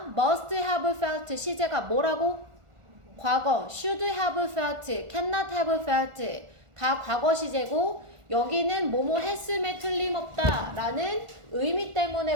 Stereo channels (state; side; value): late; left; 1.4 ms